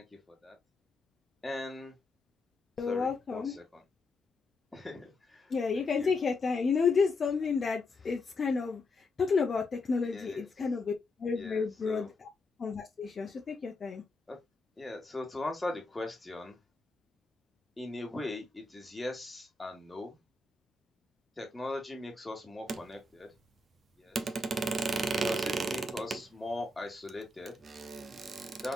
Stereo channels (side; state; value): right; quieter; 3.1 dB